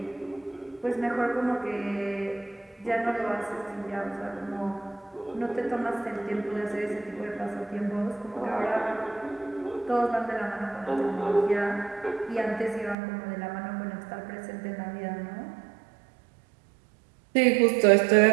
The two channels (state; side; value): drops out; left; at 13.0 s